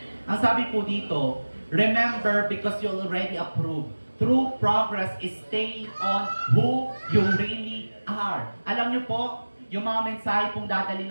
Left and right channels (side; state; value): both; inverted; correlation -1.00